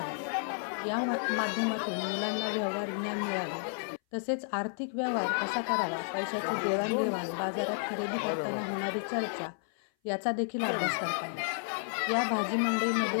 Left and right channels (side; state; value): right; silent; 57 dB below the other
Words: या माध्यमातून मुलांना व्यवहार ज्ञान मिळाले. तसेच आर्थिक व्यवहार कसा करावा, पैशाची देवाणघेवाण, बाजारात खरेदी करताना होणारी चर्चा याचा देखील अभ्यास करता आला. या भाजी